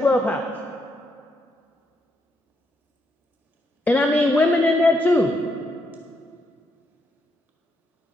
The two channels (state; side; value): normal; both; correlation 0.78